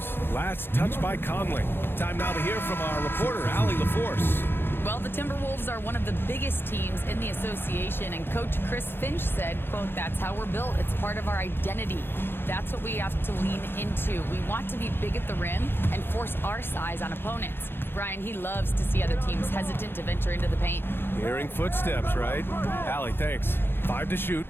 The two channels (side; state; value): right; late; 0.10 ms